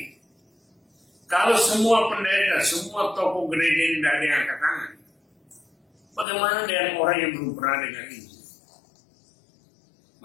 Kalau semua pendeta, semua tokoh gereja ini tidak ada yang angkat tangan, bagaimana dengan orang yang belum pernah dengar ini?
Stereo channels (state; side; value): drops out; right; at 6.2 s